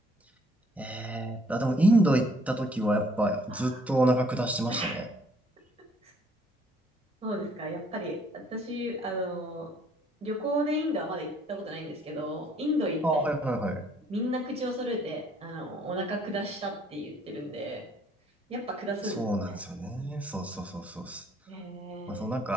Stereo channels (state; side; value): normal; both; correlation 0.62